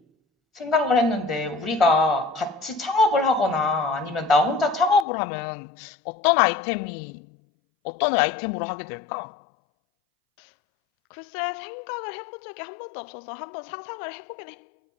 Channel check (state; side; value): drops out; right; at 5.1 s